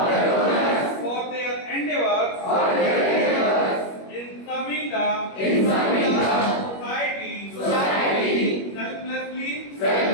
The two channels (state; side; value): late; right; 21 ms